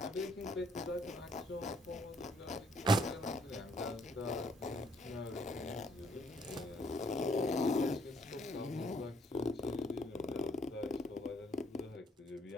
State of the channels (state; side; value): normal; both; correlation 0.67